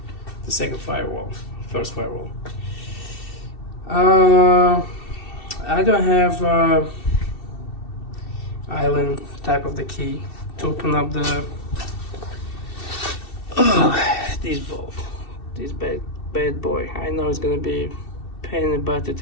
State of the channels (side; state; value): right; late; 2.7 ms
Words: second firewall, first firewall. I don't have island type of the key to open up the this bolt, this bad boy. I know it's gonna be pain in the butt to